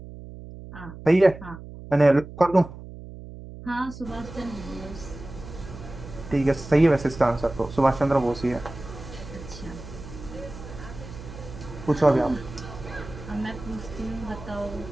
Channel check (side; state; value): right; noise; hum, 14 dB below the sound